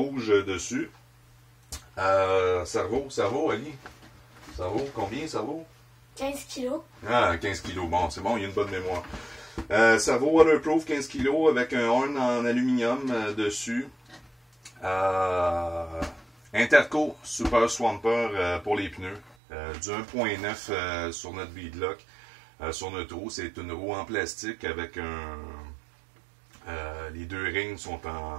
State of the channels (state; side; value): drops out; left; at 19.4 s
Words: dessus. Cerveau, Ali? Ça vaut combien, ça vaut? 15 kilos. Ah, 15 kilos. Bon, c'est bon, il y a une bonne mémoire. Ça vaut waterproof 15 kilos avec un horn en aluminium dessus. Interco Super Swamper pour les pneus. Du 1.9 sur notre beadlock. Sur notre roue, c'est une roue en plastique avec les deux rings sont